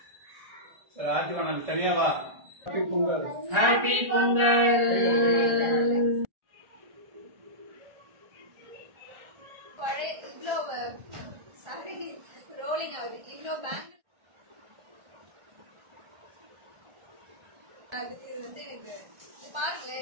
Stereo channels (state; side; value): late; left; 1.3 ms